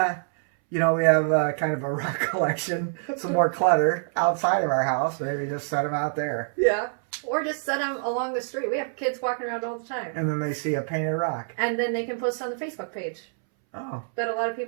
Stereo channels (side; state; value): left; silent; 61 dB below the other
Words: you know, we have kind of a rock collection, some more clutter outside of our house. Maybe just set them out there. Yeah. Or just set them along the street. We have kids walking around all the time. And then they see a painted rock. And then they can post on the Facebook page. Oh. That a lot of